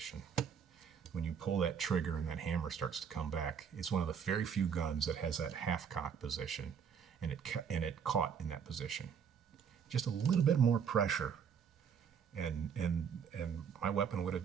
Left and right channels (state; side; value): quieter; left; 7.2 dB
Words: When you pull that trigger and that hammer starts to come back, it's one of the very few guns that has that half-cock position, and it caught in that position. Just a little bit more pressure, and my weapon would have